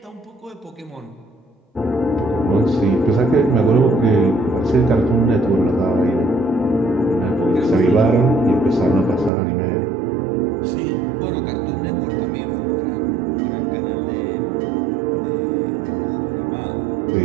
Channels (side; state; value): left; drops out; at 9.3 s